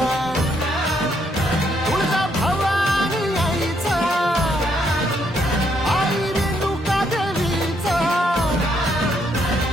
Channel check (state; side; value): normal; both; correlation 0.73